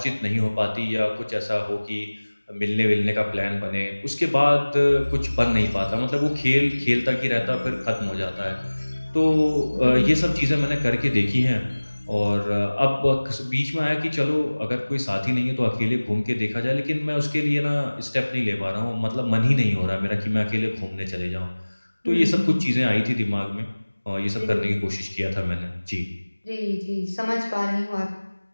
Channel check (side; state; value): both; inverted; correlation -1.00